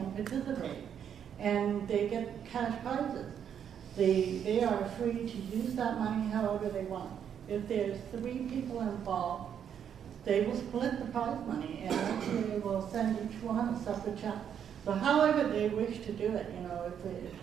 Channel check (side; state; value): left; quieter; 8.6 dB